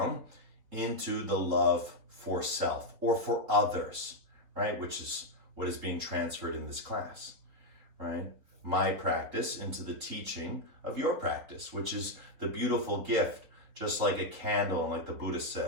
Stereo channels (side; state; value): left; late; 3.9 ms